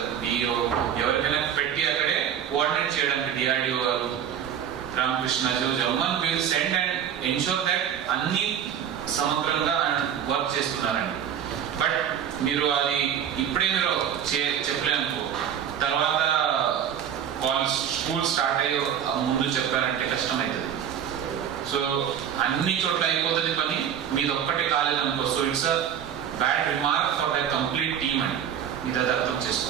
DO, ఎవరికైనా పెట్టి అక్కడే కోఆర్డినేట్ చేయడానికి డిఆర్డిఓ గారు, Ramakrishna Jagan will send and ensure that అన్ని సమగ్రంగా వర్క్ చేస్తున్నారండి. బట్ మీరు అది ఇప్పుడే మీరు చెప్పలేనుకో, తర్వాత కాలేజ్ స్కూల్ స్టార్ట్ అయ్యే ముందు చెప్పారంటే కష్టమవుతుంది. సో అన్ని చోట్ల అయిపోతుంది పని, మీది ఒక్కటే కాలేదనుకో. So it's a bad remark for the complete team అండి, మీరు అది అర్థం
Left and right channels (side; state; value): left; quieter; 9.1 dB